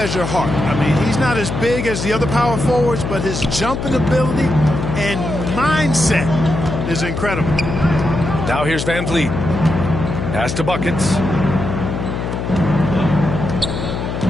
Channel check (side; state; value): left; noise; hum, 4 dB below the sound